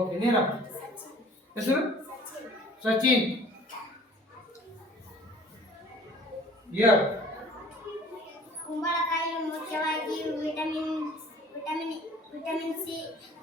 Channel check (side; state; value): both; normal; correlation 0.50